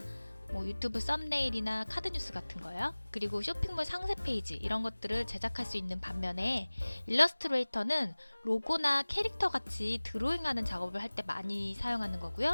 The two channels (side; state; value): both; inverted; correlation -1.00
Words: 뭐 유튜브 썸네일이나 카드 뉴스 같은 거요. 그리고 쇼핑몰 상세 페이지 이런 것들을 제작할 수 있는 반면에 일러스트레이터는 로고나 캐릭터 같이 드로잉하는 작업을 할 때 많이 사용하는